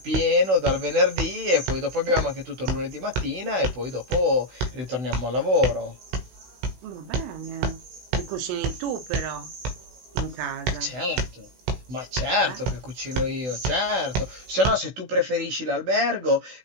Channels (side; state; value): left; late; 16 ms